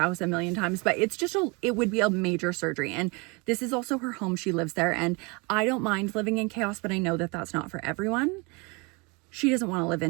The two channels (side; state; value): left; quieter; 28.7 dB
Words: a million times, but it would be a major surgery. And this is also her home. She lives there and I don't mind living in chaos, but I know that that's not for everyone. She doesn't want to live